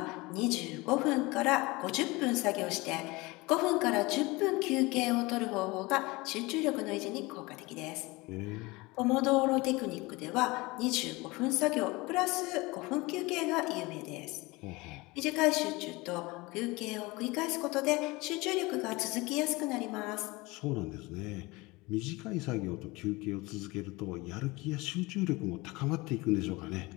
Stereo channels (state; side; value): quieter; right; 23.0 dB